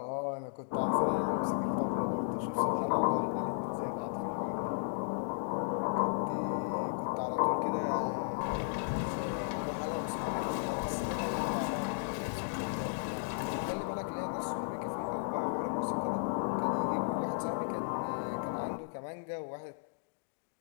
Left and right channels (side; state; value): right; silent; digital silence